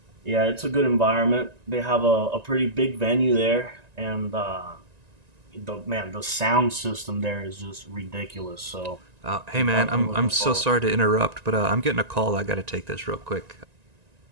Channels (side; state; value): left; late; 1.9 ms